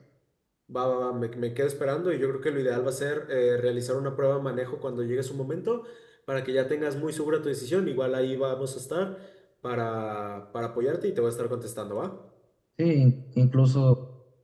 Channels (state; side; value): identical; both; correlation 1.00